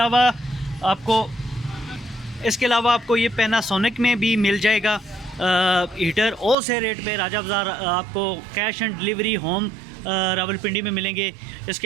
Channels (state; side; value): drops out; left; at 6.6 s